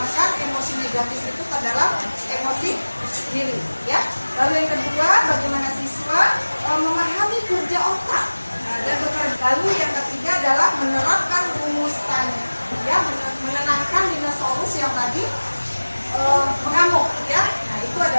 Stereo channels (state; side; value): inverted; both; correlation -1.00